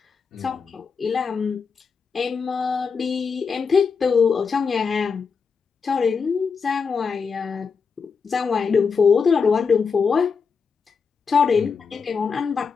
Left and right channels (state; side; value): quieter; right; 5.6 dB